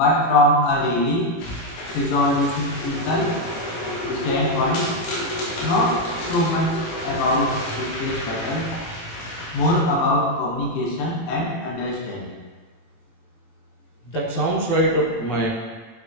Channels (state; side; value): late; right; 18 ms